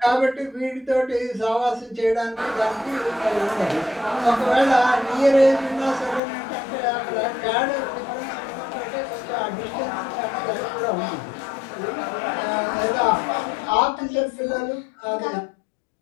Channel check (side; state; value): right; drops out; at 6.2 s